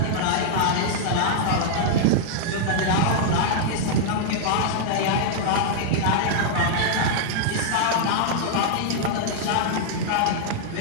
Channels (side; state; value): both; different; correlation -0.01